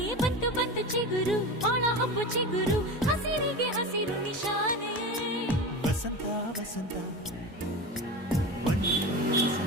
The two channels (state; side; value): normal; both; correlation 0.27